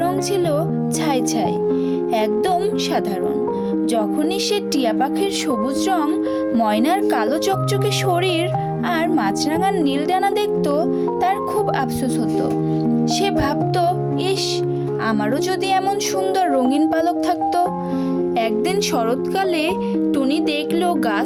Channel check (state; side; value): identical; both; correlation 1.00